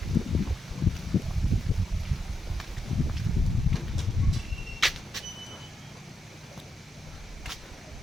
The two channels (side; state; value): both; normal; correlation 0.84